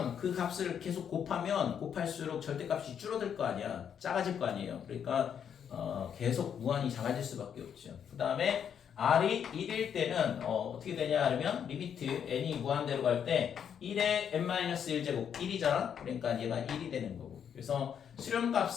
그 값을 계속 곱할수록 절대값이 줄어들 거 아니야. 작아질 거 아니에요. 그러니까 계속 무한히 작아질 수밖에 없죠. 그 다음에 r이 1일 때는 어떻게 되냐 하면 리미트 n이 무한대로 갈 때 1에 n-1제곱 1이잖아. 그러니까 얘가 1이 되는 거고. 그래서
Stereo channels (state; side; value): quieter; right; 8.2 dB